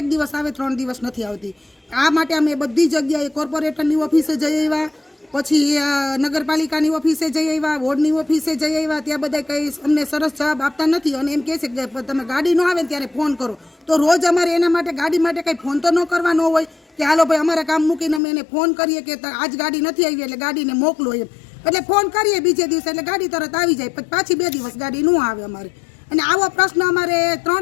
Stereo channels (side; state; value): right; drops out; at 18.2 s